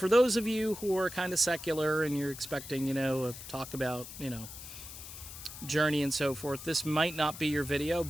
those of you who are kind of secular and you're expecting, talk about, Journey and so forth, this might not be your video,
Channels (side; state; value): left; noise; hiss, 12 dB below the sound